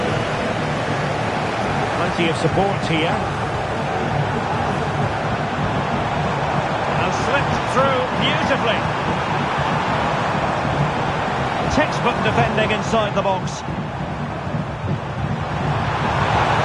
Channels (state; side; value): identical; both; correlation 1.00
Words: Plenty of support here. And slipped through beautifully. Textbook defending inside the box.